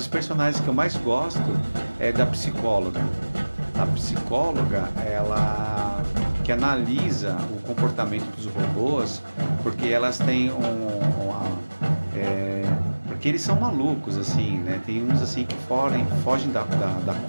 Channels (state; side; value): inverted; both; correlation -1.00